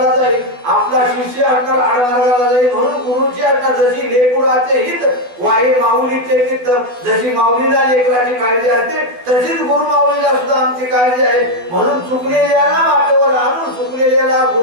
जाईल. आपला शिष्य असणार आडमार्गाला जाईल. म्हणून गुरुची असणार जशी लेकराचे हित वाई माऊलीचे चित्त जशी माऊलीला लेकराची काळजी असते तशीच गुरु माऊलीला सुद्धा आमची काळजी आहे. म्हणून चुकलेल्याला वाटेवर आणून चुकलेल्याला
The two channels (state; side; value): late; left; 12 ms